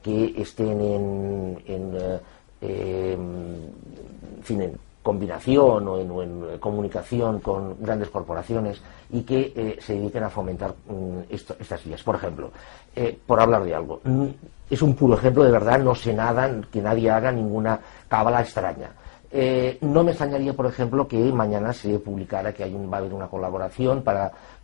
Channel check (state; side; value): silent; right; 63 dB below the other